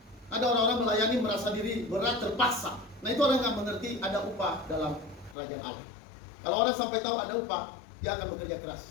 Ada orang-orang melayani merasa diri berat, terpaksa. Nah, itu orang yang mengerti ada upah dalam kerajaan Allah. Kalau orang sampai tahu ada upah, dia akan bekerja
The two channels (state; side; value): drops out; right; at 5.4 s